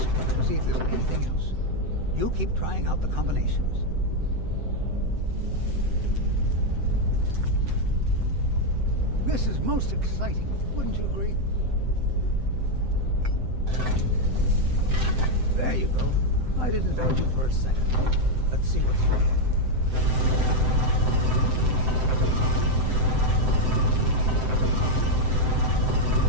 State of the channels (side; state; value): left; late; 7.8 ms